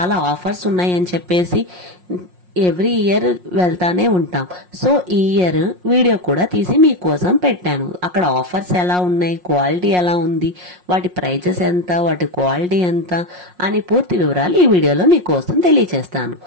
ఆఫర్స్ ఉన్నాయని చెప్పేసి ఎవ్రీ ఇయర్ వెళ్తానే ఉంటాం. సో ఈ ఇయర్ వీడియో కూడా తీసి మీకోసం పెట్టాను. అక్కడ ఆఫర్స్ ఎలా ఉన్నాయి, క్వాలిటీ ఎలా ఉంది, వాటి ప్రైజెస్ ఎంత, వాటి క్వాలిటీ ఎంత అని పూర్తి వివరాలు ఈ వీడియోలో మీకోసం తెలియచేస్తాను.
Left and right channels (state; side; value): late; left; 5.6 ms